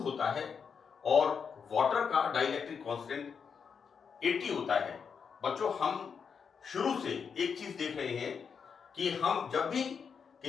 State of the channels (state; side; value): quieter; right; 6.4 dB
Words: होता है और वाटर का डाइलेक्ट्रिक कांस्टेंट 80 होता है। बच्चों, हम शुरू से एक चीज देख रहे हैं कि हम जब भी